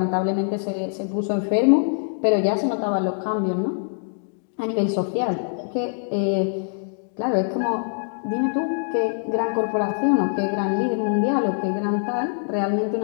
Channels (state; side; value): silent; right; digital silence